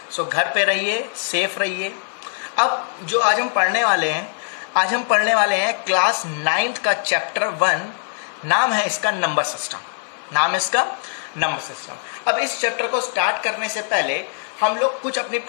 सो घर पे रहिए, सेफ रहिए। अब जो आज हम पढ़ने वाले हैं, आज हम पढ़ने वाले हैं क्लास 9th का चैप्टर 1। नाम है इसका नंबर सिस्टम। नाम है इसका नंबर सिस्टम। अब इस चैप्टर को स्टार्ट करने से पहले हम लोग कुछ अपनी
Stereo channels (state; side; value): silent; right; 62 dB below the other